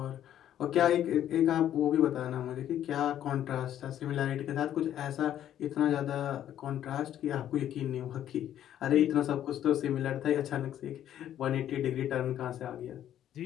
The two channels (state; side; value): quieter; right; 11.1 dB